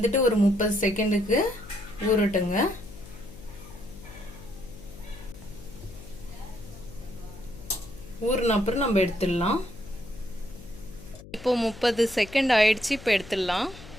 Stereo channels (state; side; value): noise; left; hum, 17 dB below the sound